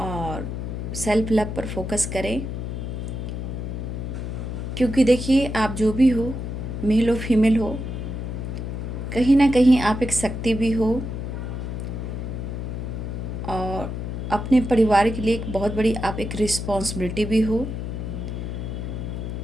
सेल्फ लव पर फोकस करें। क्योंकि देखिए, आप जो भी हो, मेल हो फीमेल हो, कहीं ना कहीं आप एक शक्ति भी हो और अपने परिवार के लिए एक बहुत बड़ी आप एक रिस्पॉन्सिबिलिटी भी हो।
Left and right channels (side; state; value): left; noise; hum, 5 dB below the sound